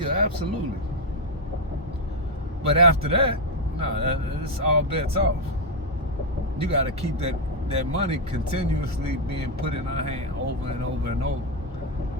absolutely. But after that, no, it's all bets off. You got to keep that money continuously being put in her hand over and over and over.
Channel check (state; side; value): normal; both; correlation 0.03